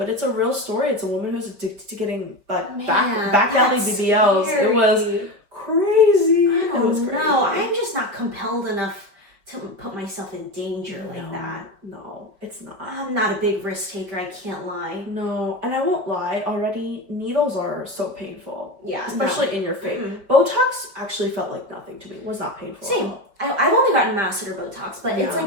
it's a real story. It's a woman who's addicted to getting back alley BBLs. Scary. It was crazy. I don't know. I'm just not compelled enough to put myself in danger like that. No, it's not. I'm not a big risk taker. I can't lie. No, and I won't lie. Already, needles are so painful. Yeah, especially in your face. Botox actually felt like nothing to me. It was not painful. Same. I've only gotten masseter Botox, but it's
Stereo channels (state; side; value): late; left; 5.1 ms